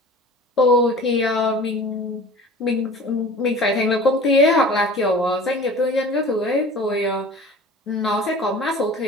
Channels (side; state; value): both; normal; correlation 0.41